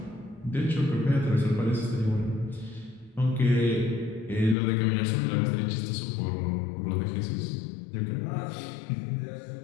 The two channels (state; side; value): drops out; right; at 4.5 s